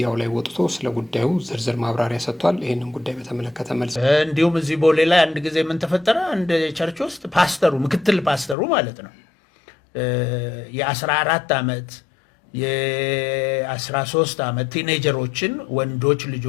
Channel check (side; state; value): right; drops out; at 8.6 s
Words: ላይ ወጥቶ ስለ ጉዳዩ ዝርዝር ማብራሪያ ሰጥቷል። ይህንን ጉዳይ በተመለከተ መልስ እንዲሁም እዚህ ቦሌ ላይ አንድ ጊዜ ምን ተፈጠረ? አንድ ቸርች ውስጥ ፓስተሩ ምክትል ፓስተሩ ማለት ነው የ14 ዓመት የ13 ዓመት ቲኔጀሮችን ወንዶች